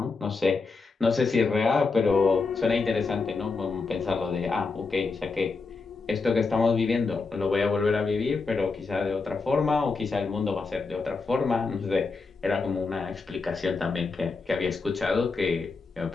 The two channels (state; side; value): quieter; right; 4.3 dB